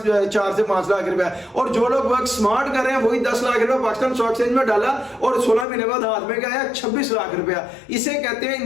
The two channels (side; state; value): right; drops out; at 5.7 s